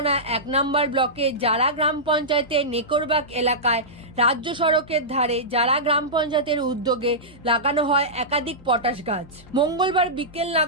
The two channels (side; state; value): both; normal; correlation -0.15